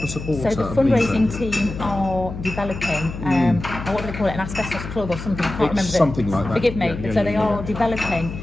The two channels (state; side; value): noise; left; hum, 9 dB below the sound